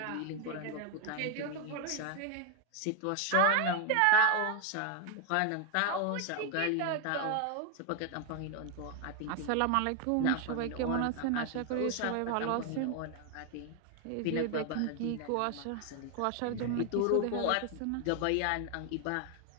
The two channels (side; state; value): both; different; correlation 0.01